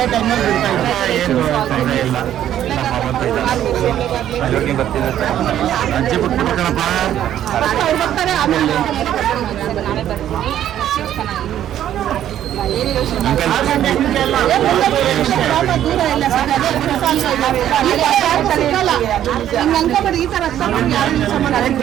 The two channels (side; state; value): left; quieter; 11.3 dB